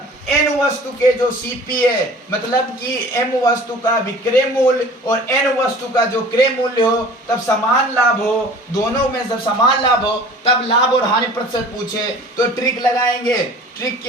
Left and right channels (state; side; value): normal; both; correlation 0.45